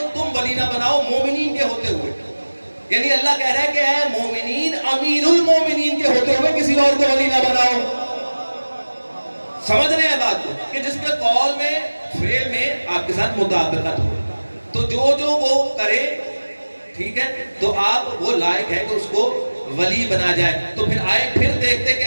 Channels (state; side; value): inverted; both; correlation -1.00